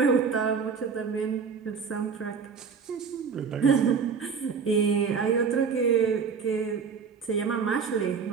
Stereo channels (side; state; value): left; quieter; 5.9 dB